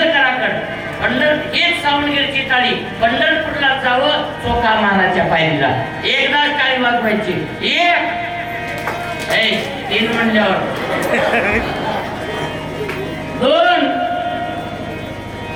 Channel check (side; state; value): both; identical; correlation 1.00